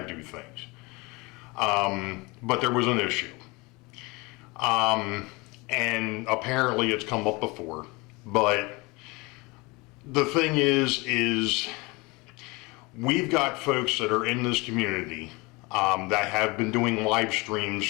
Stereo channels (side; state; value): right; quieter; 25.5 dB